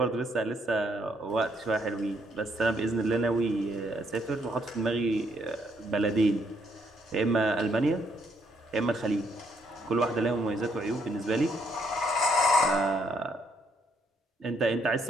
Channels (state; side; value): normal; both; correlation 0.72